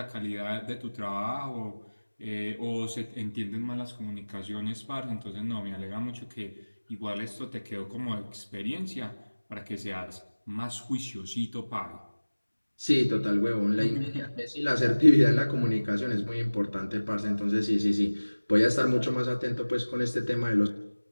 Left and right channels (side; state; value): both; inverted; correlation -1.00